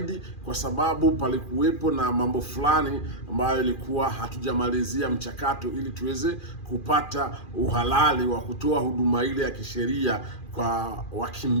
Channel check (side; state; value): right; late; 2.4 ms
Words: kwa sababu palikuwepo na mambo fulani ambayo ilikuwa hatujamalizia mchakato ili tuweze kupata uhalali wa kutoa huduma ile ya kisheria kwa